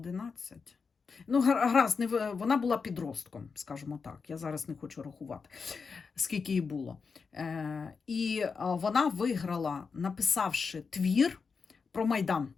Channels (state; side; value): quieter; right; 5.2 dB